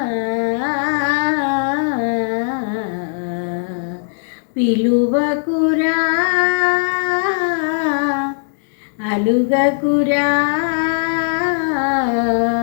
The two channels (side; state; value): right; silent; digital silence